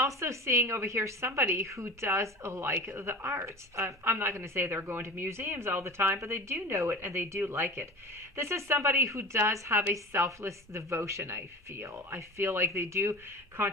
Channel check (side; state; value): both; normal; correlation 0.35